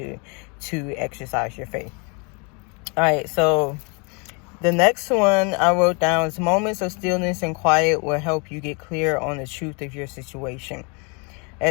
to exercise your faith. All right, so the next one I wrote down is moments of stillness and quiet will help you get clear on the truth of your situation.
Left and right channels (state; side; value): quieter; right; 33.0 dB